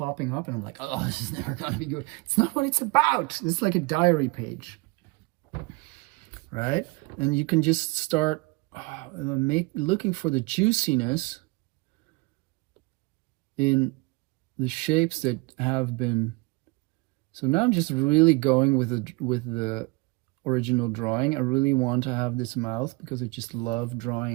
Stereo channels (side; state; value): left; quieter; 25.7 dB